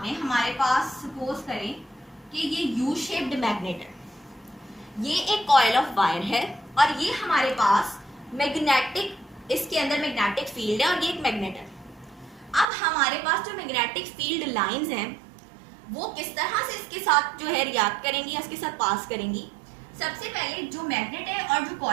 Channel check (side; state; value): left; drops out; at 12.7 s